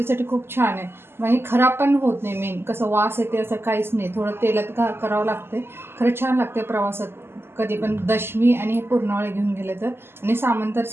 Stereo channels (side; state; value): left; late; 0.12 ms